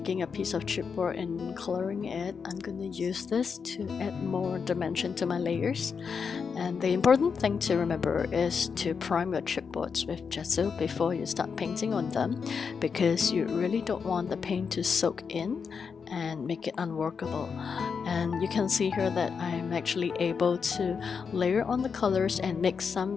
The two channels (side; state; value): right; quieter; 5.9 dB